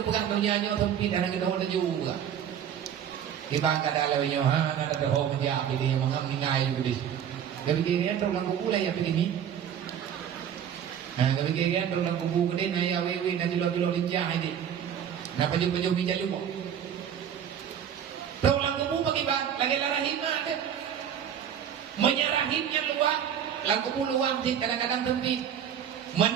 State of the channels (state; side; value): quieter; left; 9.0 dB